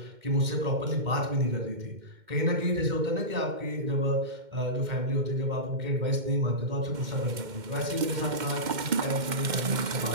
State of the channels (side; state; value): left; late; 2.1 ms